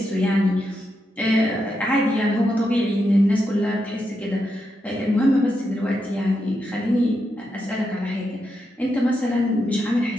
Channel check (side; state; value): both; normal; correlation 0.84